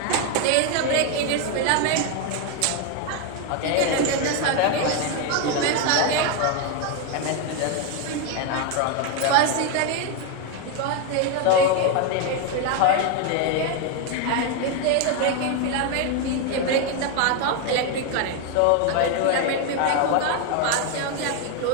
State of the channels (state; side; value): different; both; correlation 0.01